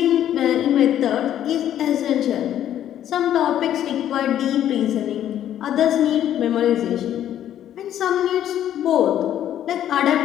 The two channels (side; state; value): right; quieter; 11.1 dB